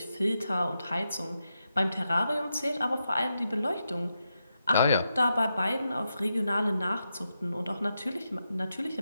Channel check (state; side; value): inverted; both; correlation -0.86